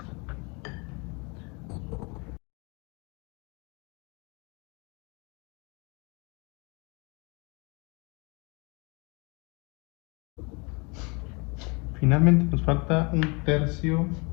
Finalmente nos falta un tercio,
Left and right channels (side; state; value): right; quieter; 29.9 dB